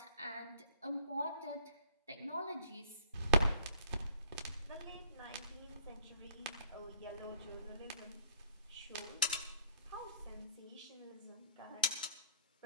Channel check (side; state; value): both; inverted; correlation -0.55